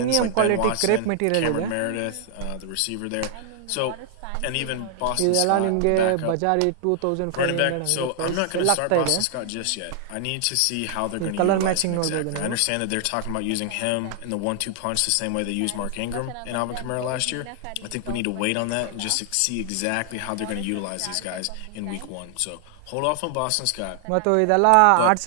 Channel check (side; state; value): both; different; correlation 0.00